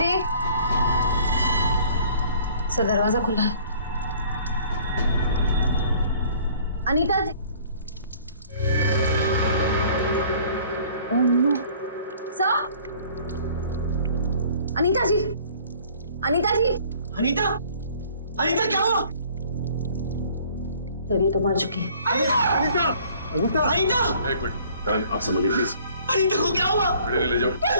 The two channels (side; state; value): both; inverted; correlation -0.55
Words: सर दरवाजा खुला है। अनीता जी, सर, अनीता जी, अनीता जी, अनीता, अनीता क्या हुआ? सर ये तो मर चुकी है। अनीता, अनीता, अनीता, एक मिनट, करण आप समझिए प्लीज। अनीता को क्या हुआ? ले जाओ।